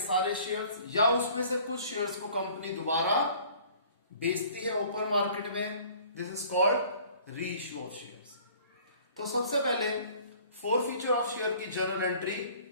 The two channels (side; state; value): both; inverted; correlation -0.52